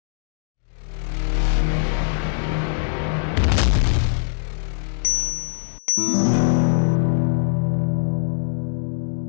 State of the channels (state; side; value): silent; right; digital silence